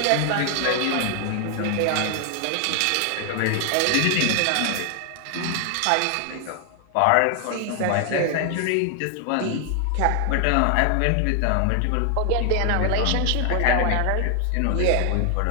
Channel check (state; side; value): different; both; correlation 0.00